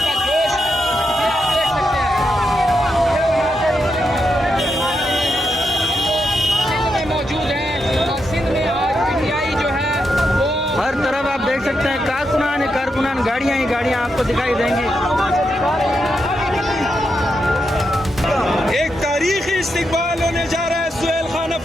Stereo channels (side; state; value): both; normal; correlation 0.83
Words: हर तरफ आप देख सकते हैं कारकुनान ही कारकुनान, गाड़ियां ही गाड़ियां आपको दिखाई देंगी। एक तारीखी इस्तकबाल होने जा रहा है सुहेल खान